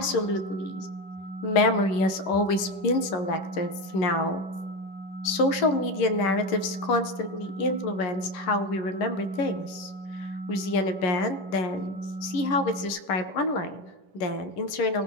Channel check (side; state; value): right; late; 10 ms